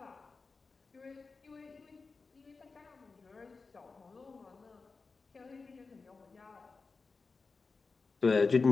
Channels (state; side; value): quieter; right; 4.3 dB